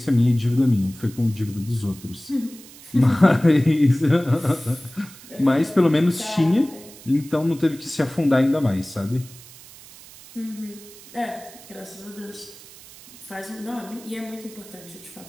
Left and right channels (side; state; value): right; noise; hiss, 20 dB below the sound